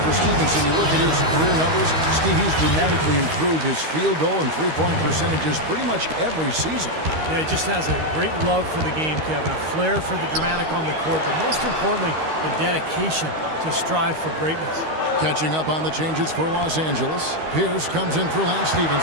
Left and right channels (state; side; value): late; left; 13 ms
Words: for Stevenson, you look at his career numbers, Steve, he's dramatically improved his field goal and three-point percentages pretty much every season. Yeah, he just has a great love for the game, Kevin. A flair for the dramatic on the court, but most importantly, the dedication to strive for greatness. Catching up on the changes for Los Angeles. Pierce comes in for Lance